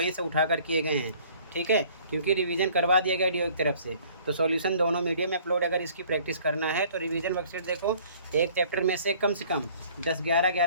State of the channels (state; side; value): inverted; both; correlation -0.55